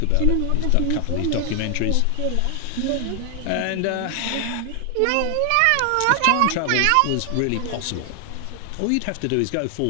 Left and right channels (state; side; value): different; both; correlation 0.00